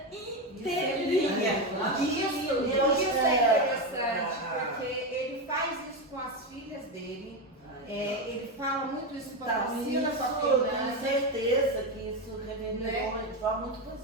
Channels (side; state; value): both; normal; correlation 0.13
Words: inteirinha. Isso é interessante, porque ele faz isso com as filhas dele. Ele fala muito isso com a Priscila, com a tenho Fernanda. certeza que isso reverberou Né? de forma muito